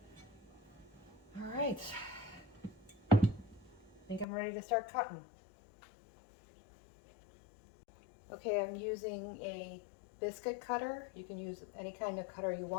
All right, I think I'm ready to start cutting. Okay, I'm using a biscuit cutter. You can use any kind of cutter you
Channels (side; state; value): right; drops out; at 4.2 s